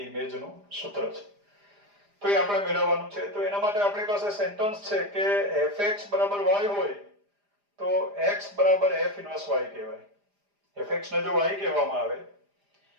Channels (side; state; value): left; late; 4.9 ms